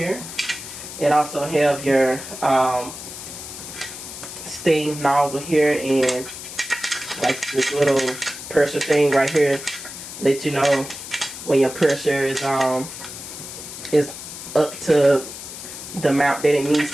It also have your steam nozzle here, and like this little pressure thing right here, let you know when your pressure is up to the amount that it needs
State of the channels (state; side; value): noise; left; hiss, 11 dB below the sound